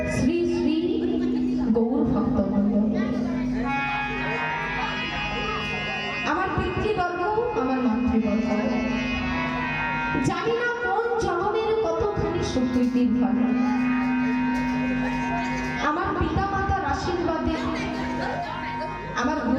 শ্রী শ্রী গৌর ভক্তবৃন্দ, আমার পিতৃবর্গ, আমার মাতৃবর্গ, জানি না কোন জন্মের কতখানি সুকৃতির ফল। আমার পিতা মাতার আশীর্বাদে, আমার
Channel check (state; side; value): identical; both; correlation 1.00